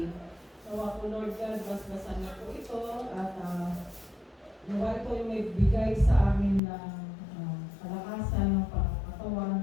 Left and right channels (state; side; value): drops out; right; at 6.6 s